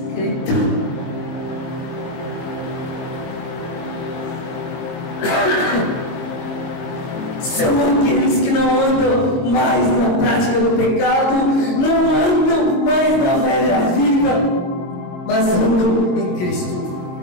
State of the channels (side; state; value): right; late; 22 ms